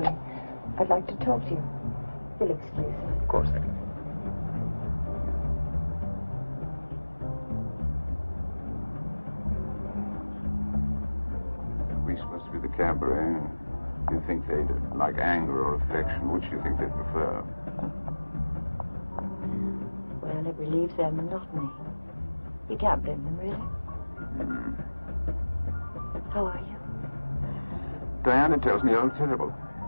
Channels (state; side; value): inverted; both; correlation -1.00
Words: I'd like to talk to you. You'll excuse me. Of course I can. We supposed to be the cabaret. Do you think they'd like anger or affection? Which do you think they'd prefer? Well, it relieves their monotony. You can't blame them, really. How are you? Diana tells me you're terrible.